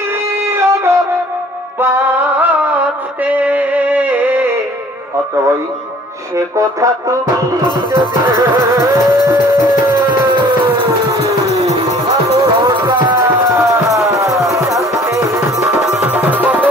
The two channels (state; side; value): normal; both; correlation 0.53